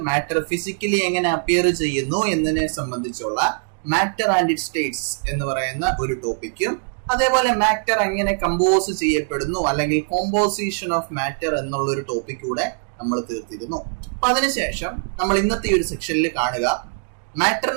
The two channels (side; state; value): left; silent; 61 dB below the other